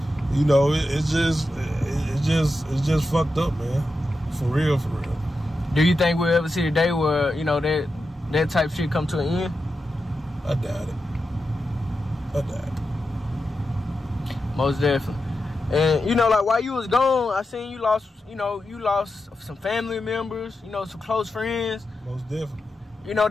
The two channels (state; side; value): normal; both; correlation 0.89